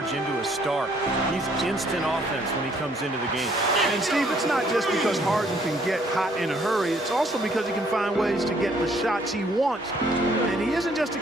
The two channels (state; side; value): normal; both; correlation 0.64